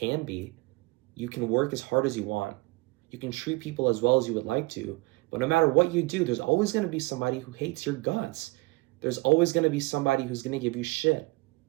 be. You can work as hard as you want. You can treat people as well as you would like to. But no matter what you do, there's always going to be somebody who hates your guts. There's always going to be somebody who's going to give you shit.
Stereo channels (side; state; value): left; quieter; 23.9 dB